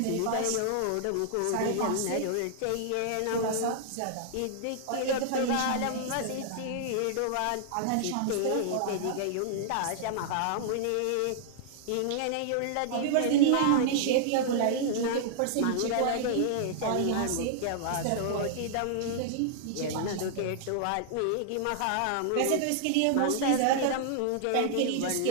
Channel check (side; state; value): both; different; correlation -0.01